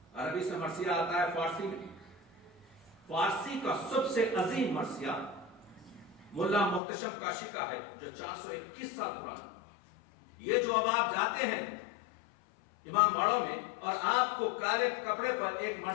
عربی سے مرثیہ آتا ہے فارسی میں۔ فارسی کا سب سے عظیم مرثیہ ملا محتشم کاشی کا ہے جو 421 سال پرانا۔ یہ جو اب آپ جاتے ہیں امام باڑوں میں اور آپ کو کالے کپڑے پر ایک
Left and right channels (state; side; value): drops out; right; at 6.8 s